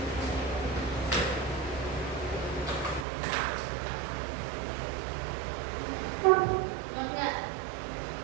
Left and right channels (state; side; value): drops out; left; at 3.1 s